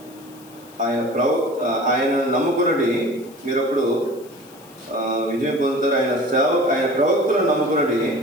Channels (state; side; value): noise; left; hiss, 24 dB below the sound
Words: ఆయన నమ్ముకున్నది మీరు అప్పుడు విజయం పొందుతారు, ఆయన ప్రవక్తలను నమ్ముకున్నది